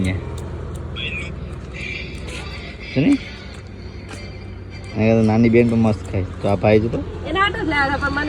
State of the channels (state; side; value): identical; both; correlation 1.00